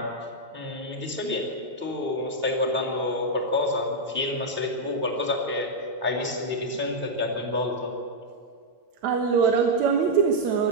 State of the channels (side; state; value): left; late; 8.9 ms